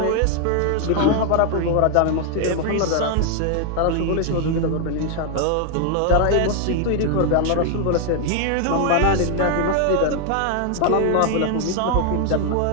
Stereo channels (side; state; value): both; different; correlation 0.00